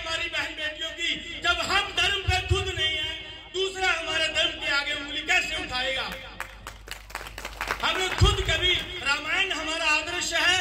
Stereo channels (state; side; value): identical; both; correlation 1.00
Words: बहन बेटियों की, जब हम धर्म पे खुद नहीं है, दूसरा हमारे धर्म के आगे उंगली कैसे उठाएगा। हमें खुद कभी, रामायण हमारा आदर्श है,